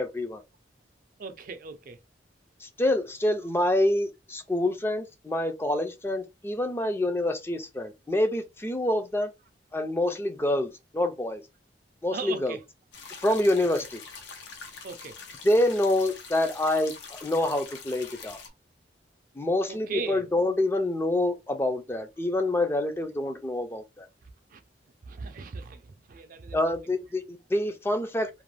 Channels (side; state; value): both; normal; correlation 0.76